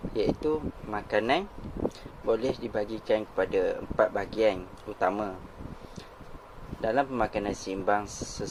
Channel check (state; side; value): identical; both; correlation 1.00